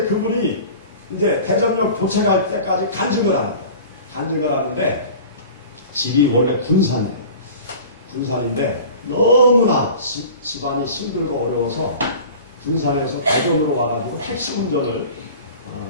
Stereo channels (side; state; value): both; inverted; correlation -0.40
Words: 그분이 이제 대전역 도착할 때까지 간증을 하는 거예요. 간증을 하는데 집이 원래 군산이에요. 군산인데 너무나 집안이 힘들고 어려워서 군산에서 대전으로 와가지고 택시 운전을